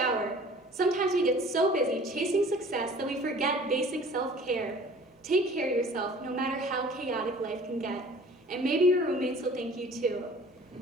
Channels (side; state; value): both; normal; correlation 0.48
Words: Sometimes we get so busy chasing success that we forget basic self-care. Take care of yourself, no matter how chaotic life can get. And maybe your roommates will thank you too.